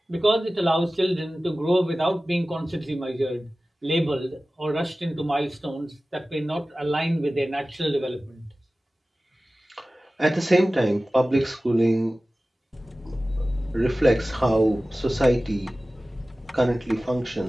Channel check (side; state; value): both; normal; correlation 0.97